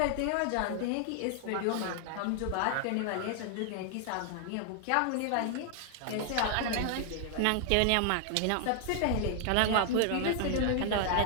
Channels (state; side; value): different; both; correlation 0.00